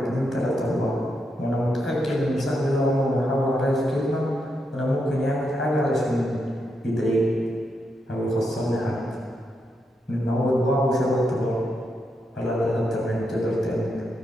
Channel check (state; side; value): normal; both; correlation 0.82